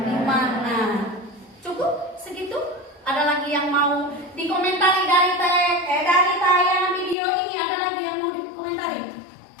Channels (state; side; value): drops out; right; at 7.2 s